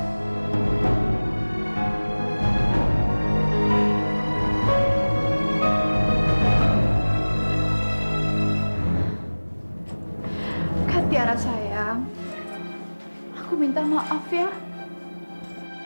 Tiara sayang, aku minta maaf ya.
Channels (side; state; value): both; inverted; correlation -1.00